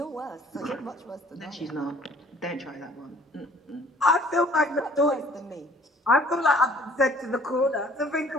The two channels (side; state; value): both; normal; correlation 0.55